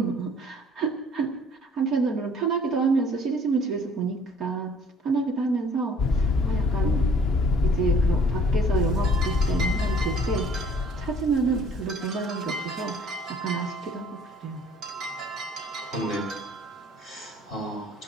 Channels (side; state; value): both; normal; correlation 0.55